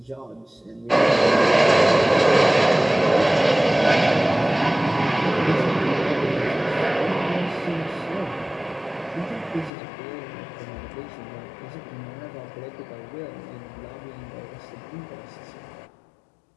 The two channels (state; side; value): drops out; right; at 9.7 s